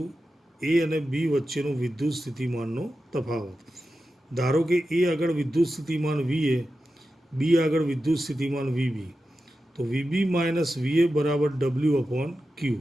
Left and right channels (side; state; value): both; normal; correlation 0.91